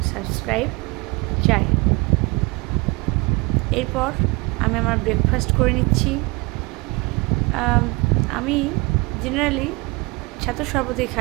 সাবস্ক্রাইব চাই। এরপর আমি আমার ব্রেকফাস্ট করে নিচ্ছি। আমি জেনারেলি ছাতু শরবতই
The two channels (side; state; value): left; quieter; 26.5 dB